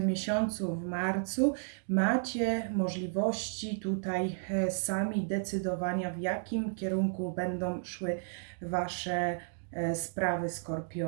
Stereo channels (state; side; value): silent; left; digital silence